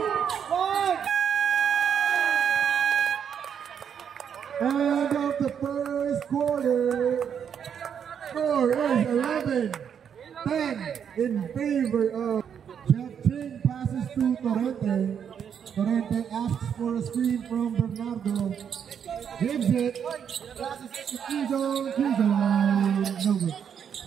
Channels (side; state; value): left; quieter; 7.9 dB